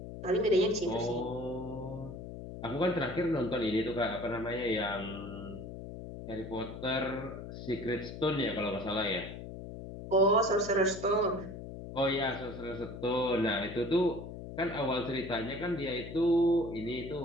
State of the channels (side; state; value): left; noise; hum, 10 dB below the sound